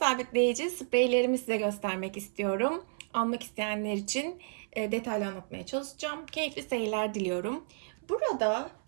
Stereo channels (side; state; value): left; silent; 57 dB below the other